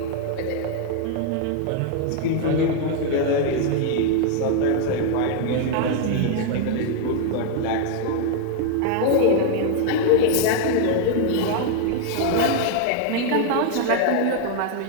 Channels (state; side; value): different; both; correlation 0.00